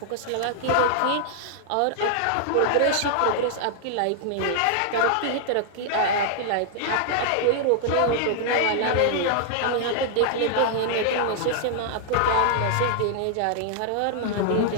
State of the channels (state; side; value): different; both; correlation -0.01